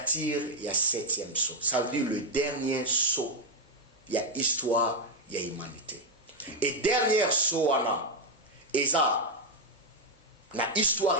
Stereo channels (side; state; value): both; normal; correlation 0.04